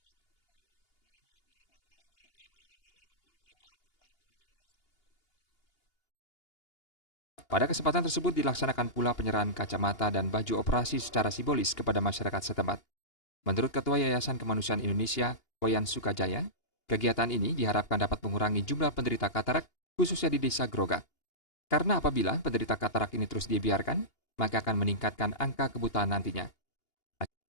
melihat, menikmati keindahan alam ini maupun keindahan ciptaan Tuhan Yang Maha Esa. Pada kesempatan tersebut dilaksanakan pula penyerahan kacamata dan baju operasi secara simbolis kepada masyarakat setempat. Menurut Ketua Yayasan Kemanusiaan Indonesia, Wayan Sukajaya, kegiatan ini diharapkan dapat mengurangi jumlah penderita katarak, khususnya di Desa Grogak. Karena apabila penderita katarak ini terus dibiarkan, maka akan meningkatkan angka kebutaan nantinya.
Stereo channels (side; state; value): right; late; 2.8 ms